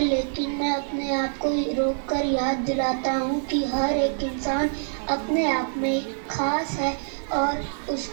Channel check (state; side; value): silent; left; digital silence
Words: लेकिन मैं अपने आप को रोक कर याद दिलाता हूँ कि हर एक इंसान अपने आप में खास है और